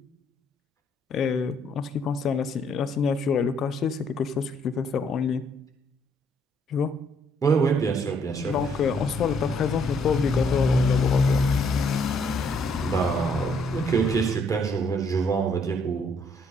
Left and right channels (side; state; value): both; normal; correlation 0.68